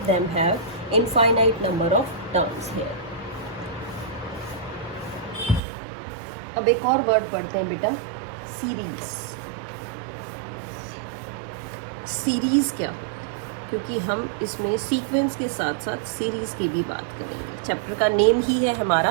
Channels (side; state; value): left; drops out; at 5.6 s